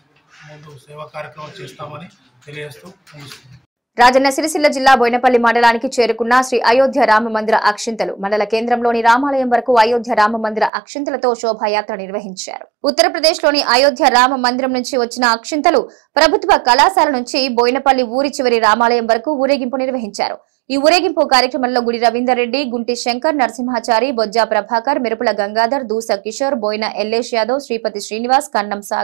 సేవా కార్యక్రమాలు చేస్తామని తెలియజేస్తూ ముగిస్తున్నాం. రాజన్న సిరిసిల్ల జిల్లా బోయినపల్లి మండలానికి చేరుకున్న శ్రీ అయోధ్య రామ మందిర అక్షింతలు మండల కేంద్రంలోని రామాలయం వరకు అయోధ్య రామ మందిర అక్షింతలతో శోభాయాత్ర నిర్వహించారు. ఉత్తరప్రదేశ్లోని అయోధ్య రామ మందిరం నుంచి వచ్చిన అక్షింతలు ప్రభుత్వ కళాశాల నుంచి బోయినపల్లి ఊరి చివరి రామాలయం వరకు ఊరేగింపు నిర్వహించారు. ఈ ఊరేగింపు కార్యక్రమంలో గుడి రవీందర్ రెడ్డి, గుంటి శంకర్, నరసింహాచారి, బొజ్జా ప్రభాకర్, మిరుపుల గంగాధర్, దూస కిషోర్, బోయిన ఎల్లేష్ యాదవ్, శ్రీపతి శ్రీనివాస్, కన్నం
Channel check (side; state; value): left; drops out; at 10.7 s